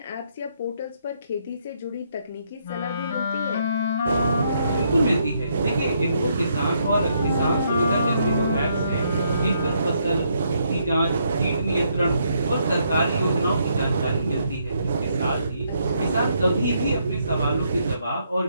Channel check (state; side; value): inverted; both; correlation -0.74